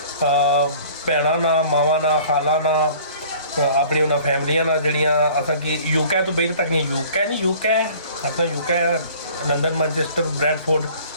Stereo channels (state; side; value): inverted; both; correlation -0.50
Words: भैन ना, मावा ना, खाला ना, अपनी उन्होंने फैमिलियां ना जड़ियाँ असा कि यूके तो बेहद तक नहीं, यूके अपना UK London, Manchester, Bradford,